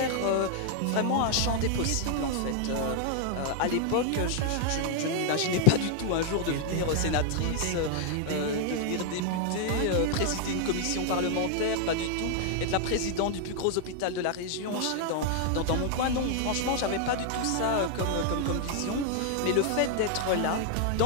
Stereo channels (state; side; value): different; both; correlation 0.00